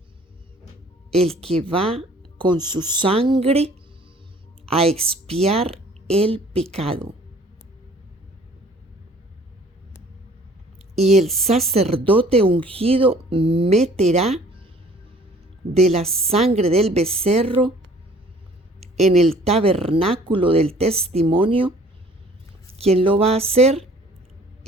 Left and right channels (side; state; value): both; normal; correlation 0.54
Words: el que va con su sangre a expiar el pecado. Y el sacerdote ungido meterá de la sangre del becerro en el tabernáculo del testimonio. ¿Quién lo va a hacer?